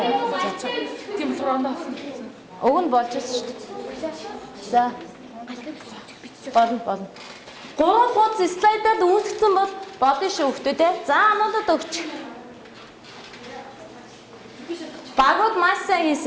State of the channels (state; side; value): identical; both; correlation 1.00